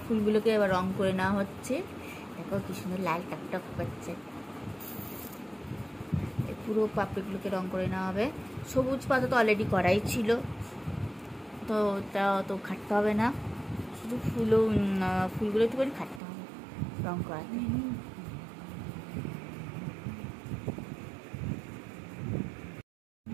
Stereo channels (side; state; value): left; drops out; at 16.2 s